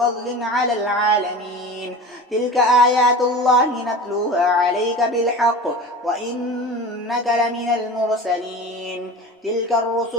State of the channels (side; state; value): both; normal; correlation 0.34